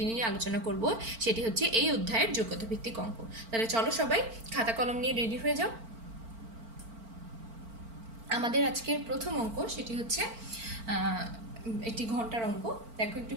নিয়ে আলোচনা করব সেটি হচ্ছে এই অধ্যায়ের যোগ্যতা ভিত্তিক অঙ্ক। তাহলে চলো সবাই খাতা কলম নিয়ে রেডি হয়ে যাও। আমাদের আজকের প্রথম অঙ্ক সেটি হচ্ছে একটি ঘন্টার অঙ্ক। দেখো, একটু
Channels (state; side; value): late; left; 4.4 ms